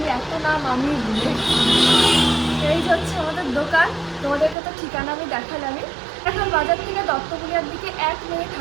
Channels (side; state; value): left; drops out; at 4.5 s